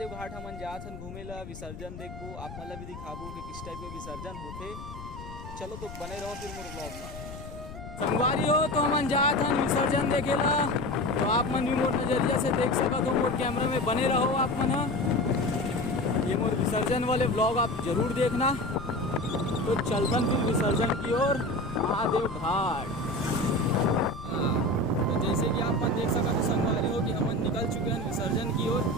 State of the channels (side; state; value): left; noise; rumble, 12 dB below the sound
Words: घाट। हमन जात हन घूमे ला, विसर्जन देखबो, आप मतलब भी दिखाबो कि किस टाइप के विसर्जन होते। चलो तो बने रहो फिर मोर ब्लॉग में। संगवारी हो तो हमन जात हन विसर्जन देखे ला, तो आप मन भी मोर नजरिया से देख सकत हो। मोर कैमरा में बने रहो आप मन। ये मोर विसर्जन वाले ब्लॉग आप जरूर देखना। तो चलतन फिर विसर्जन की ओर महादेव घाट। तो जैसे कि आप मन देख सकते हो संगवारी हो कि हमन निकल चुके हैं विसर्जन की ओर